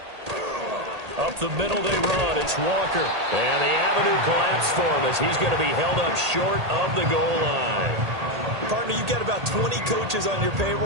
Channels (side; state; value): left; late; 1.8 ms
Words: Up the middle they run. It's Walker. And the avenue collapsed for him as he's going to be held up short of the goal line. Partner, you've got about 20 coaches on your